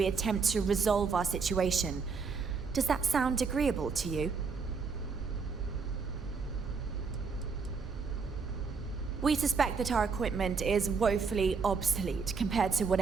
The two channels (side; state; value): left; quieter; 5.2 dB